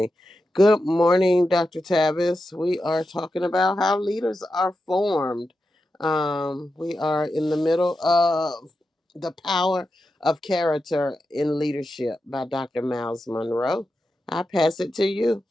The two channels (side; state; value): both; normal; correlation 0.89